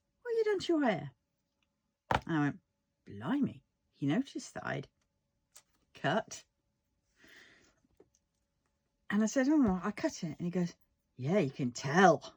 "What have you done to your hair?" And I went, "Blimey, he noticed that I'd cut." And I said, "Oh, I cut it." And he goes, "Yeah, you can tell."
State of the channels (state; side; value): identical; both; correlation 1.00